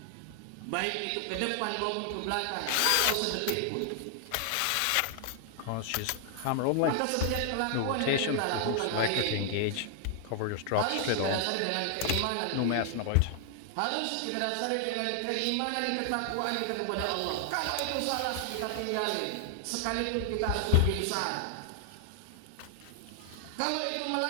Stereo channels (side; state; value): both; different; correlation 0.00